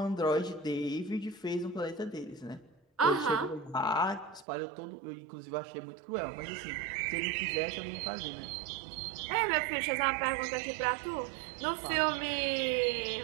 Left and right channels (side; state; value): left; drops out; at 4.5 s